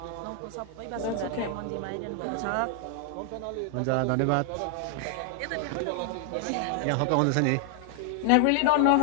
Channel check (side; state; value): both; different; correlation 0.00